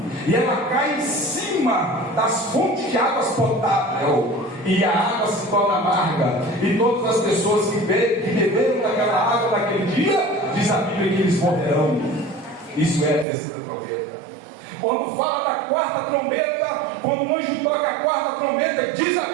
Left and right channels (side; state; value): left; drops out; at 13.2 s